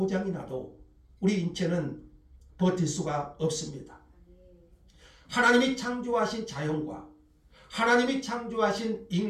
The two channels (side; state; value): both; identical; correlation 1.00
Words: 나도 우리 인체는 버틸 수가 없습니다. 하나님이 창조하신 자연과 하나님이 창조하신